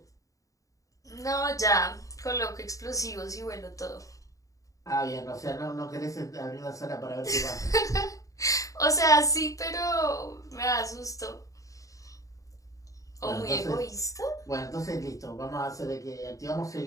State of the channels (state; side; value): late; right; 0.16 ms